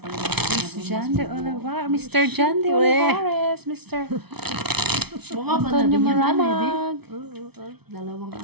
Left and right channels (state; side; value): late; left; 0.98 ms